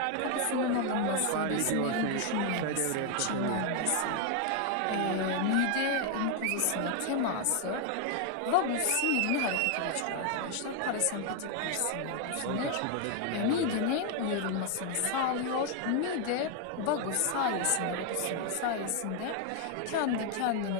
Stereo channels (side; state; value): both; different; correlation 0.01